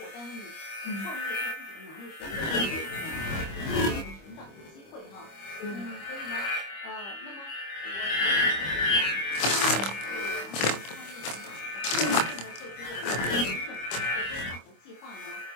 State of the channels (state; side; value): late; right; 25 ms